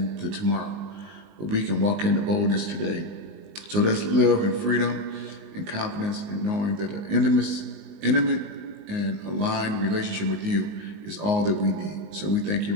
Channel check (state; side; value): late; left; 19 ms